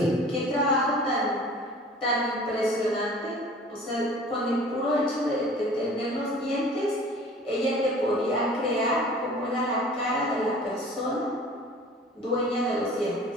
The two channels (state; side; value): normal; both; correlation 0.46